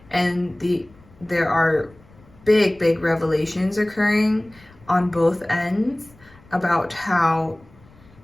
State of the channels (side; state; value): left; noise; rumble, 27 dB below the sound